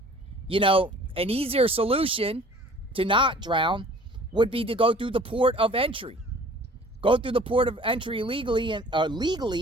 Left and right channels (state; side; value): normal; both; correlation 0.50